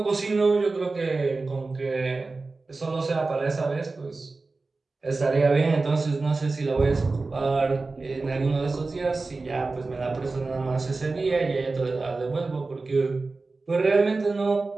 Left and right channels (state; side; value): quieter; left; 3.7 dB